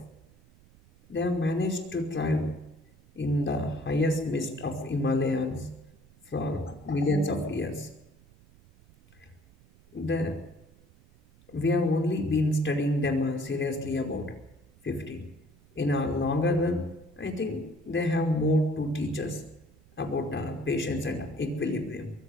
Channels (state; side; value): noise; right; rumble, 27 dB below the sound